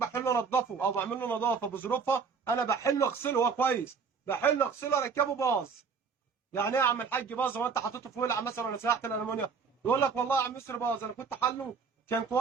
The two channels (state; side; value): quieter; left; 5.7 dB